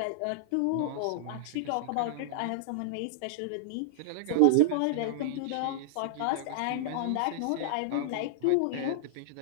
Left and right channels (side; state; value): both; different; correlation -0.01